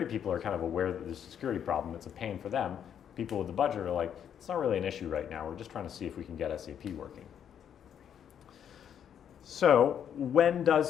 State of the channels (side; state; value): right; quieter; 8.9 dB